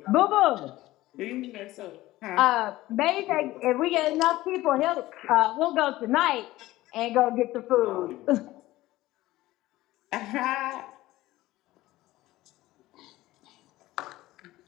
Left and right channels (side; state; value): right; quieter; 17.0 dB